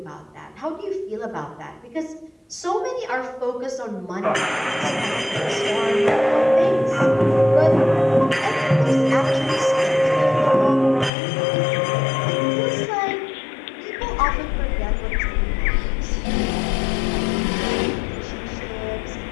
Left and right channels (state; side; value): drops out; right; at 11.1 s